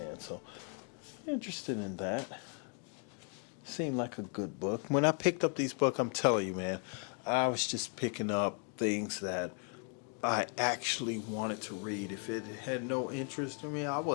So, interested in that. Seemed like a good book. When I picked up these books, I'm telling you, man, I was just picking up things that I actually wanted to read. If it had no interest in me, I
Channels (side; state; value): right; quieter; 39.0 dB